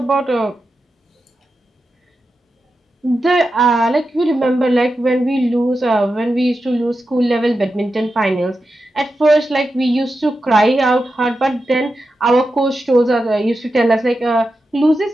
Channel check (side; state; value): both; normal; correlation 0.90